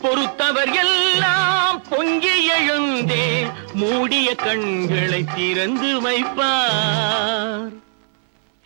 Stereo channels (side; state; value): left; silent; digital silence